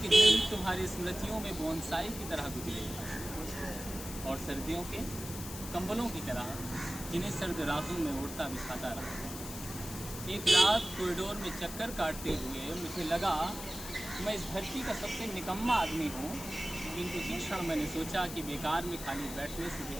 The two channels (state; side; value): noise; left; hiss, 10 dB below the sound